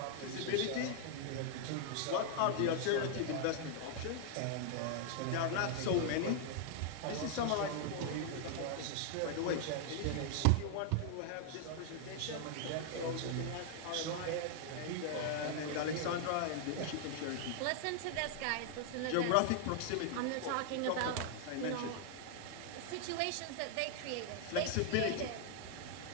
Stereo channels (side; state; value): both; different; correlation 0.00